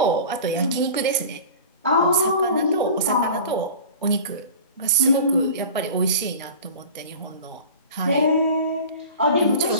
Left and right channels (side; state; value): both; inverted; correlation -0.37